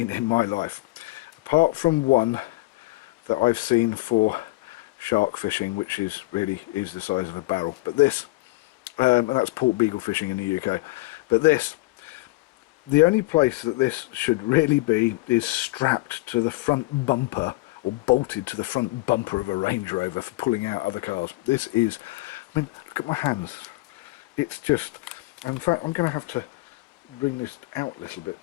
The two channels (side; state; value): right; quieter; 21.7 dB